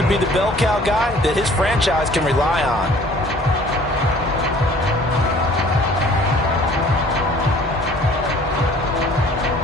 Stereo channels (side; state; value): both; normal; correlation 0.52